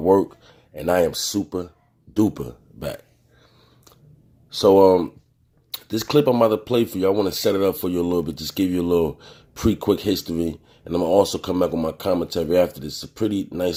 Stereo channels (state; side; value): identical; both; correlation 1.00